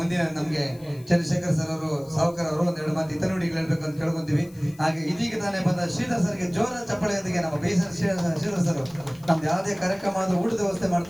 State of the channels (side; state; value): left; noise; hiss, 25 dB below the sound